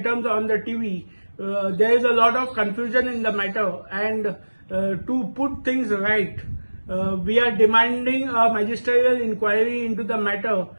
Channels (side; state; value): both; inverted; correlation -1.00